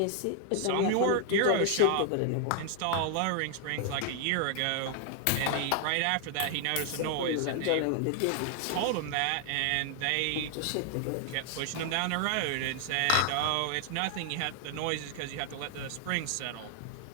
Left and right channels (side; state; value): both; different; correlation 0.00